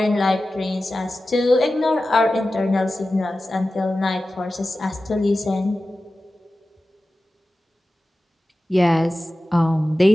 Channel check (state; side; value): normal; both; correlation 0.95